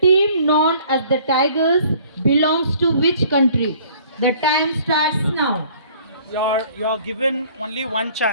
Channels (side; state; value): both; inverted; correlation -0.55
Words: team known as the Tigers belongs to which country? The time starts now. You're given only one